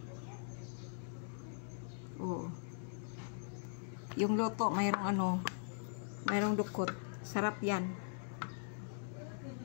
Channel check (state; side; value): silent; right; digital silence